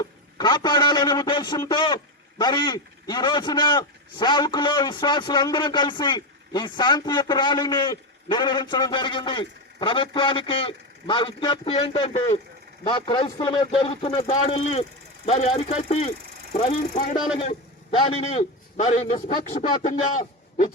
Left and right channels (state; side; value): normal; both; correlation 0.13